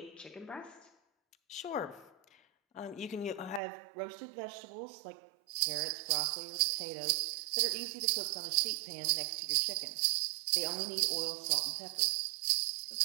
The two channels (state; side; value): drops out; left; at 3.6 s